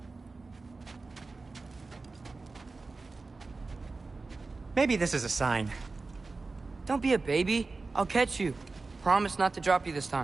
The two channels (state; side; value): quieter; left; 3.8 dB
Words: Maybe this is a sign. Don't be a baby. I'll catch you. Promise not to drop you this